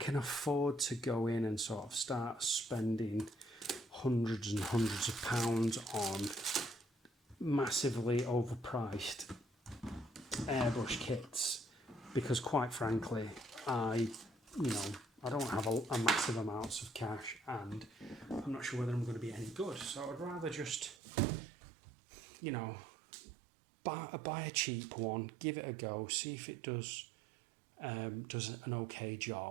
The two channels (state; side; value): drops out; left; at 21.0 s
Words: afford to go in and sort of start spending hundreds and hundreds of pounds on massively overpriced airbrush kits, because quite frankly, I don't have a massive amounts of cash, and I'm not sure whether I'm going to be any good. So I'd rather just, buy a cheap one, give it a go, see if it does an okay